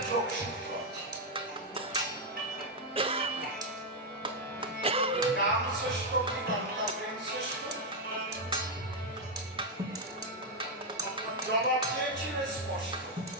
যোগসূত্র আছে। নাম শ্রেষ্ঠ কি বাংলা প্রেম শ্রেষ্ঠ? জবাব চেয়েছিল স্পষ্ট,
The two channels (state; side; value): normal; both; correlation 0.02